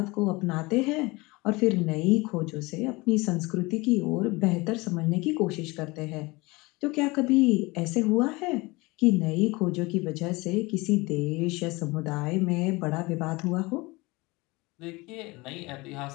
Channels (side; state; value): right; quieter; 23.5 dB